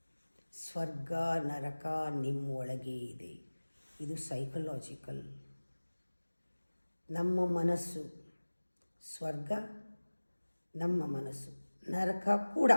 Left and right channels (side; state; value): both; inverted; correlation -1.00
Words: ಸ್ವರ್ಗ ನರಕ ನಿಮ್ಮ ಒಳಗೆ ಇದೆ. ಇದು ಸೈಕಲಾಜಿಕಲ್. ನಮ್ಮ ಮನಸ್ಸು ಸ್ವರ್ಗ, ನಮ್ಮ ಮನಸ್ಸು ನರಕ ಕೂಡ.